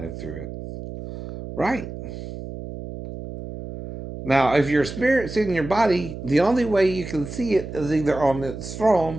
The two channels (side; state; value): right; noise; hum, 10 dB below the sound